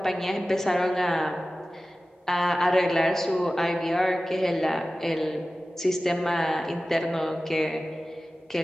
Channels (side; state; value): both; normal; correlation 0.96